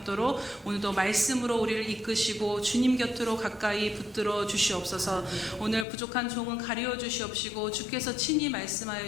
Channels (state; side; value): drops out; right; at 5.9 s